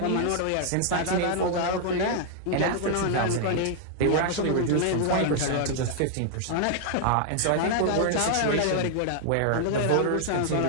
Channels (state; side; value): different; both; correlation -0.01